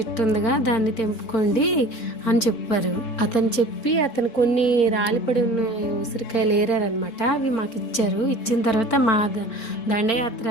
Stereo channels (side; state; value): right; late; 3.7 ms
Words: ఉందిగా దాన్ని తెంపుకోండి అని చెప్పారు. అతను కొన్ని రాలిపడి ఉన్న ఉసిరికాయలు ఏరారనమాట. అవి మాకు ఇచ్చారు. ఇచ్చిన తర్వాత మా దండయాత్ర